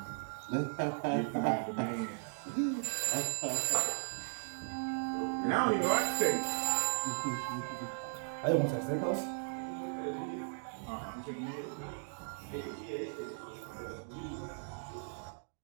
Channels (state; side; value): silent; left; digital silence